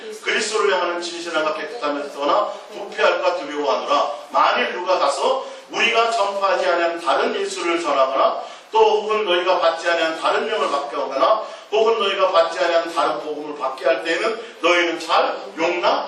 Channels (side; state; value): both; identical; correlation 1.00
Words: 그리스도를 향하는 진실함과 깨끗함에서나 부패할까 두려워하노라. 만일 누가 가서 우리가 전파하지 아니한 다른 예수를 전하거나 또 혹은 너희가 받지 아니한 다른 명을 받게 하거나 혹은 너희가 받지 아니한 다른 복음을 받게 할 때에는 너희는 잘